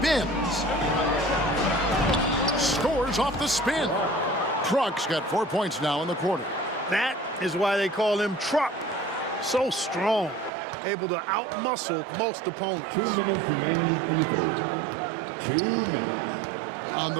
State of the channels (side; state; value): left; drops out; at 10.5 s